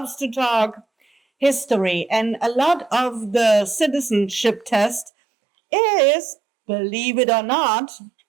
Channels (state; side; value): drops out; left; at 5.1 s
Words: to talk history. And a lot of the citizenship test is, believe it or not,